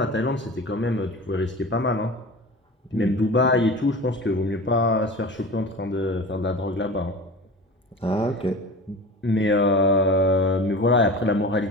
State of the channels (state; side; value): normal; both; correlation 0.34